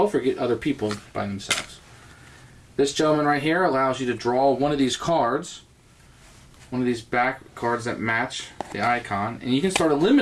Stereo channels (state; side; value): identical; both; correlation 1.00